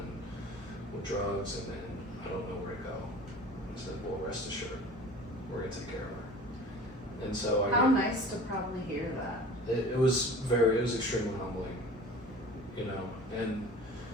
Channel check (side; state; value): both; normal; correlation 0.42